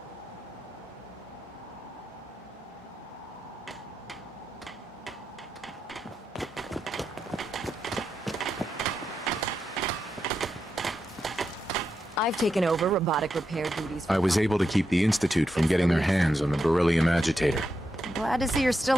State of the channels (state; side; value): normal; both; correlation 0.86